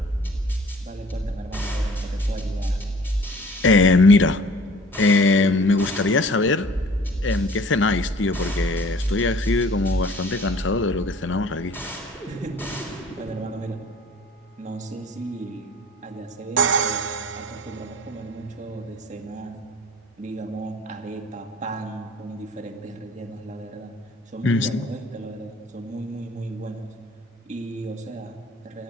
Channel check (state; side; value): normal; both; correlation 0.49